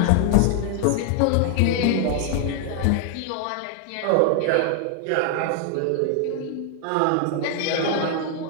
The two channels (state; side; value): different; both; correlation 0.00